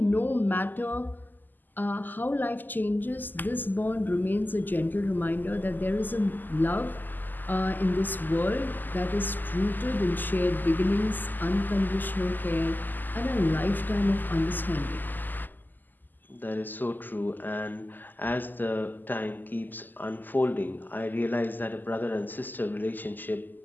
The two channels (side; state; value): right; late; 0.087 ms